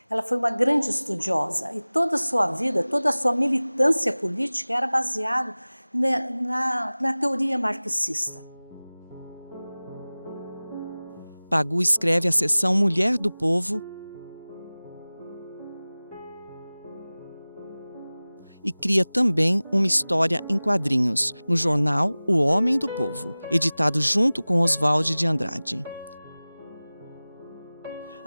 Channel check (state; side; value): inverted; both; correlation -0.99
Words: Ela foi uma grande estudiosa e toda a sua vida, toda a sua militância política era baseada na teoria marxista. Pagu escreve a seção Mulher do Povo e cria também uma história em quadrinhos, no jornal O Homem do Povo, editado junto com Oswald de Andrade.